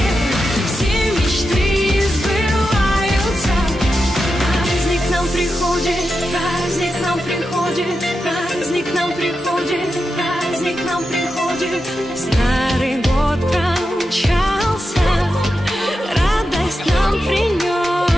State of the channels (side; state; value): both; normal; correlation 0.89